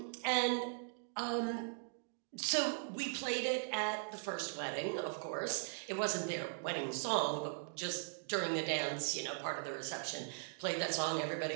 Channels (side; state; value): left; silent; digital silence